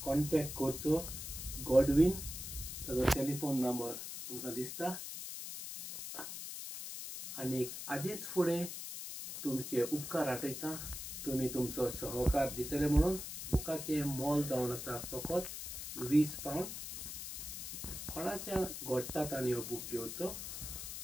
कॉन्टॅक्ट करचो। गॉडवीन ताजो टेलिफोन नंबर तुमकां दिसता। आनीक आदींच फुडें तुमचे उपकार आठयता। तुमी तुमचो सहकार दितले म्हणून बुकाचें मोल जावन आसा फकत 20 पावंड। कोणाच्या घोडटात आनी हो बूक घेवचो।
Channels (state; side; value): noise; left; hiss, 7 dB below the sound